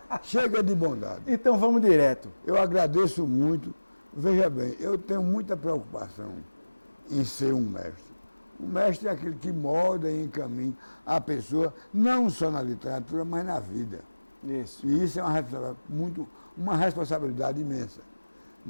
Chega de bondade. Então, vamos direto. Eu agradeço muito. Veja bem, eu tenho muita preocupação em ser um mestre. O mestre é aquele que molda e encaminha a pessoa, não só na literatura, mas na vida. Isso. E isso é uma responsabilidade imensa.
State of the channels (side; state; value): both; inverted; correlation -1.00